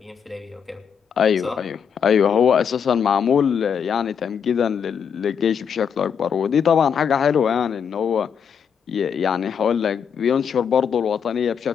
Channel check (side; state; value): right; quieter; 7.3 dB